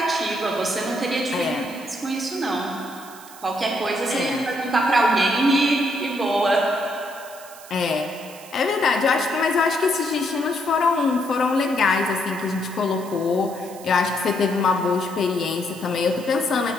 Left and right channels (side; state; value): right; noise; hiss, 19 dB below the sound